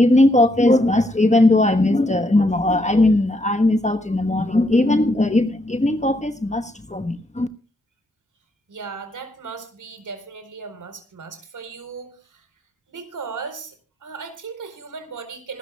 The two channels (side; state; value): both; normal; correlation 0.75